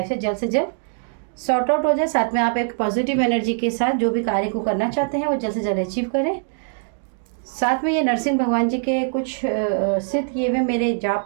से जल्द सॉर्ट आउट हो जाए। साथ में आप एक पॉजिटिव एनर्जी के साथ जो भी कार्य को करना चाहते हैं वो जल्द से जल्द अचीव करें। साथ में ये नरसिंह भगवान जी के कुछ सिद्ध किए हुए मेरे जाप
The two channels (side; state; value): left; silent; digital silence